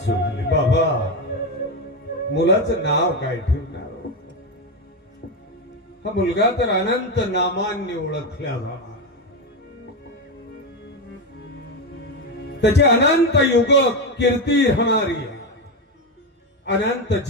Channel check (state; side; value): normal; both; correlation 0.12